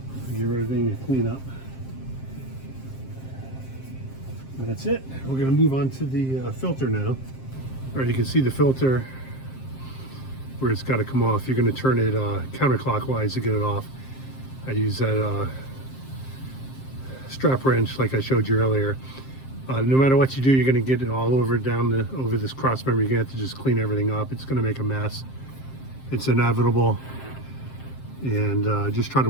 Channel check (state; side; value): late; right; 7.6 ms